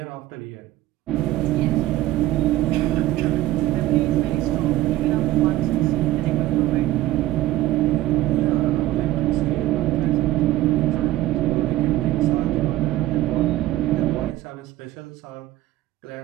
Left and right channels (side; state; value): left; quieter; 15.6 dB